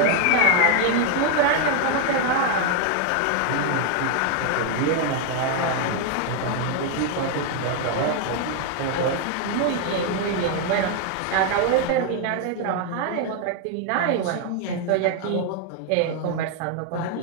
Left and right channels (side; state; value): both; different; correlation 0.00